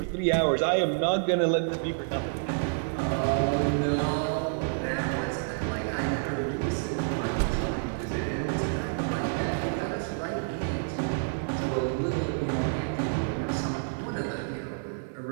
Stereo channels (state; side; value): silent; left; digital silence